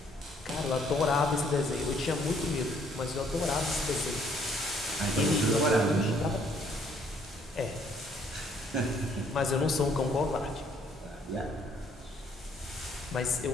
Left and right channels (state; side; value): normal; both; correlation 0.64